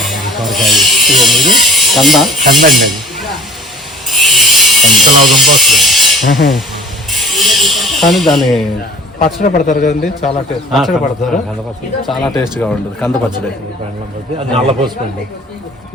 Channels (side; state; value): both; normal; correlation 0.46